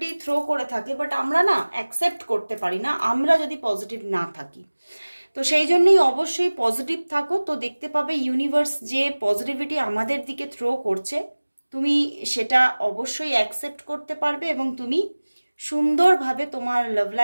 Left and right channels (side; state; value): both; inverted; correlation -1.00